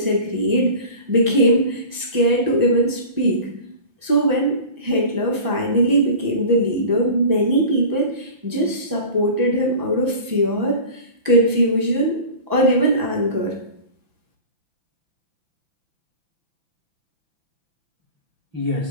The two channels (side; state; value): left; late; 5.9 ms